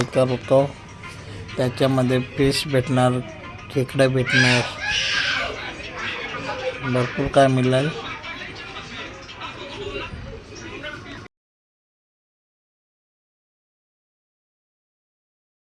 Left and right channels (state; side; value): identical; both; correlation 1.00